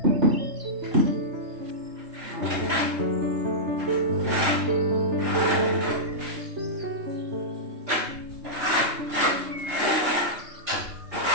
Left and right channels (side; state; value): left; late; 3.3 ms